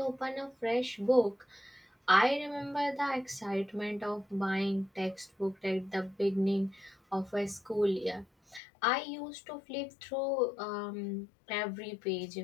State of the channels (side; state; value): right; drops out; at 8.6 s